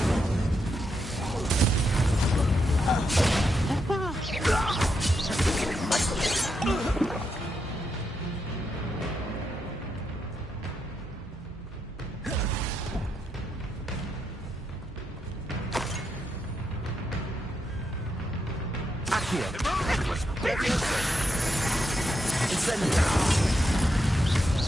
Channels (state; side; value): normal; both; correlation 0.82